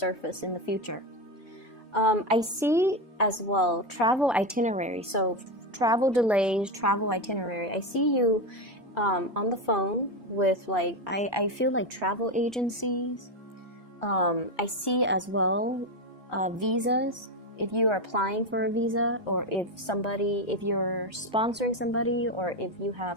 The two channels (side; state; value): both; normal; correlation 0.13